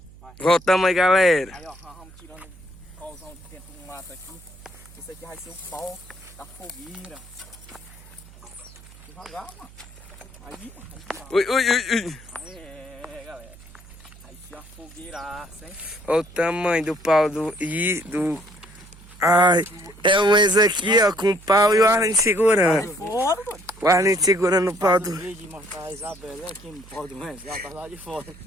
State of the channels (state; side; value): noise; right; hum, 21 dB below the sound